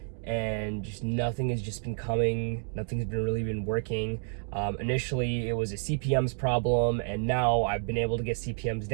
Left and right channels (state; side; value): silent; left; digital silence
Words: and just nothing has just been coming. Nothing's really been working. Initially, it was a CPMs problem, and now I've been able to get CPMs